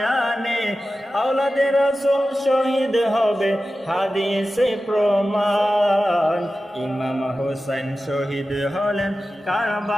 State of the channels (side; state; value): both; normal; correlation 0.94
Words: আওলাদে রাসূল শহীদ হবে হাদিসে প্রমাণ। ইমাম হোসেন শহীদ হলেন